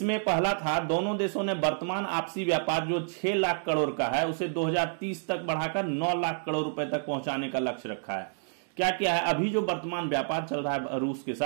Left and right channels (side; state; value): left; silent; digital silence